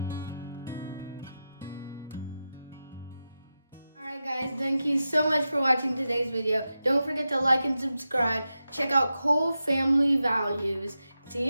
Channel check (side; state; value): both; inverted; correlation -0.91